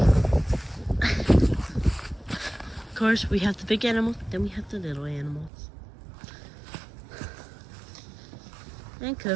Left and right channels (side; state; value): left; drops out; at 5.5 s